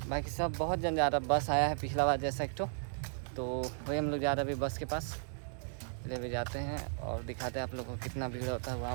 बाकी सब बहुत जन जा रहा है। बस आया है पिछला बार जैसा एक तो वही हम लोग जा रहे हैं अभी बस के पास। ले भी जाते हैं और दिखाते हैं आप लोगों को कितना भीड़ होता है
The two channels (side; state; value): left; silent; digital silence